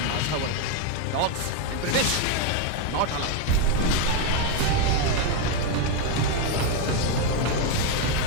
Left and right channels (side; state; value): both; different; correlation 0.02